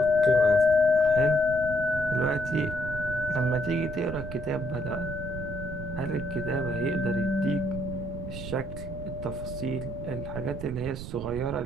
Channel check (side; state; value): right; noise; rumble, 9 dB below the sound